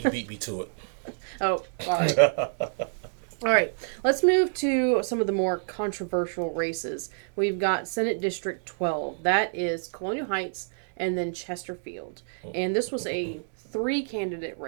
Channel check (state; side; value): silent; left; digital silence